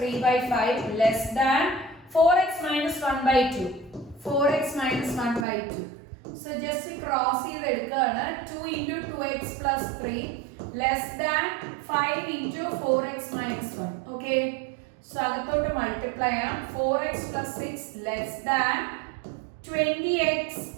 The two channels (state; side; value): drops out; left; at 5.5 s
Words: less than 4x minus 1/2 4x minus 1/2. So just cross ചെയ്തെടുക്കുകയാണ്. 2 into 2x plus 3 less than 5 into 4x minus 1. Okay. So അകത്തോട്ട് മൾട്ടിപ്ലൈ ചെയ്യാം. 4x plus 6 less than 20x